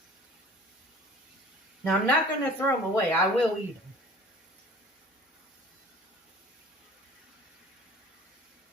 Now I'm not going to throw them away. I will eat them.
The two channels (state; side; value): normal; both; correlation 0.46